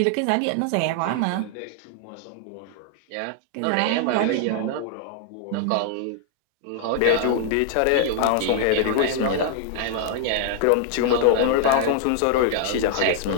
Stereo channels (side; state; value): both; different; correlation -0.01